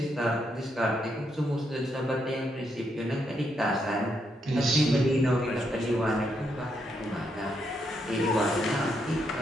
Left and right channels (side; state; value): both; normal; correlation 0.78